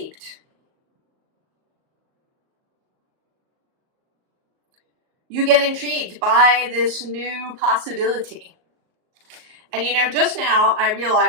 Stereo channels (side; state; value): left; late; 38 ms